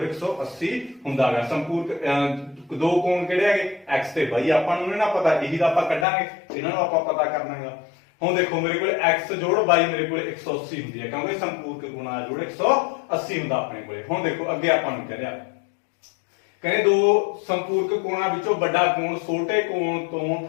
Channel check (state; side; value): drops out; right; at 6.1 s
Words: 180 ਹੁੰਦਾਗਾ। ਸੰਪੂਰਕ ਦੋ ਕੋਣ ਕਿਹੜੇ ਹੈਗੇ x ਤੇ y, ਆਪਾਂ ਨੂੰ ਨਾ ਪਤਾ, ਇਹੀ ਤਾਂ ਆਪਾਂ ਕੱਢਾਂਗੇ, ਇਹਨਾਂ ਨੂੰ ਆਪਾਂ ਪਤਾ ਕਰਨਾਗਾ। ਹੁਣ ਦੇਖੋ ਮੇਰੇ ਕੋਲ x ਜੋੜ y ਮੇਰੇ ਕੋਲ 180 ਹੁੰਦੀ ਹੈ ਕਿਉਂਕਿ ਸੰਪੂਰਕ ਗੁਣਾ ਜੋੜ 180 ਹੁੰਦਾ ਆਪਣੇ ਕੋਲੇ। ਹੁਣ ਦੇਖੋ ਅੱਗੇ ਆਪਾਂ ਨੂੰ ਕਹਿ ਰਿਹਾ, ਕਹਿੰਦੇ ਦੋ ਸੰਪੂਰਕ ਕੋਣਾਂ ਵਿੱਚੋਂ ਵੱਡਾ ਕੋਣ ਛੋਟੇ ਕੋਣ ਤੋਂ